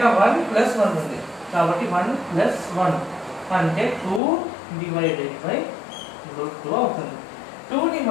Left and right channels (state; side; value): drops out; right; at 4.2 s